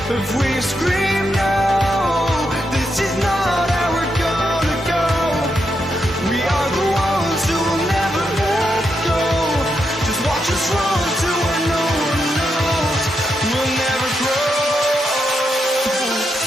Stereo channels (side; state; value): both; normal; correlation 0.83